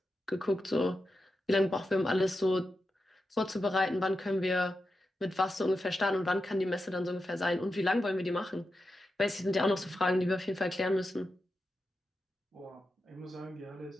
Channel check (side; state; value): both; normal; correlation 0.89